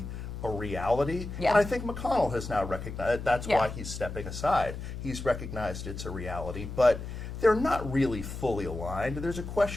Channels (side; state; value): left; noise; hum, 8 dB below the sound